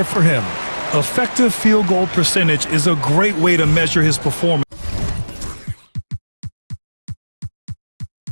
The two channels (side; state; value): both; inverted; correlation -1.00